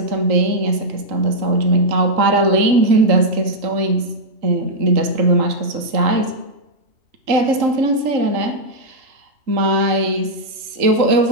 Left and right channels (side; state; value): left; late; 3.7 ms